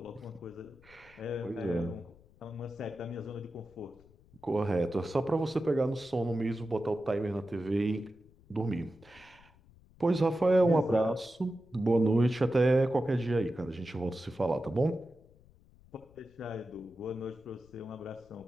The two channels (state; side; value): noise; left; rumble, 26 dB below the sound